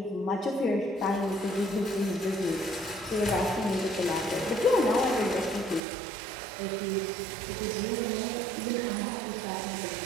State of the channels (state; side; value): drops out; left; at 5.8 s